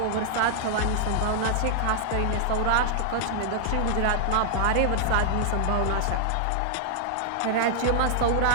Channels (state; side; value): different; both; correlation -0.01